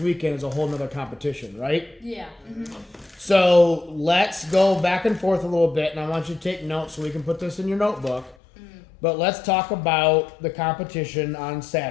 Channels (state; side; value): drops out; right; at 8.3 s